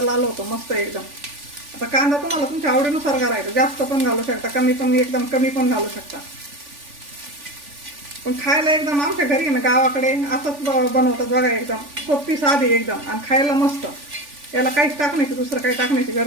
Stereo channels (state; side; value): late; left; 3.4 ms